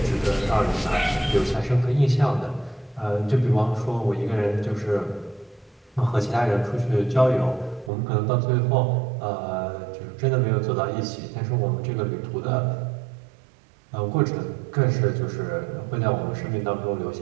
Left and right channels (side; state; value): left; drops out; at 7.9 s